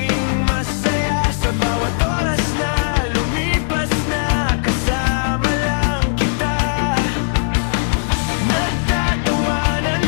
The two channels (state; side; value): silent; right; digital silence